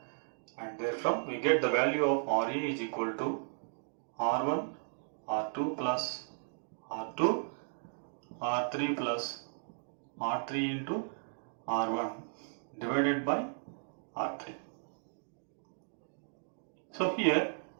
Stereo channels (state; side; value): silent; left; digital silence